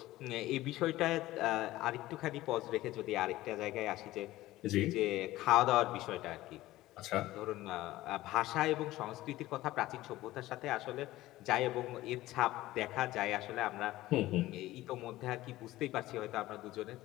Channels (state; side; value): quieter; right; 16.6 dB